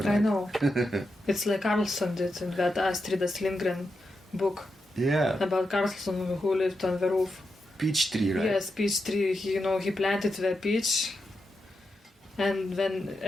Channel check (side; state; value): both; normal; correlation 0.87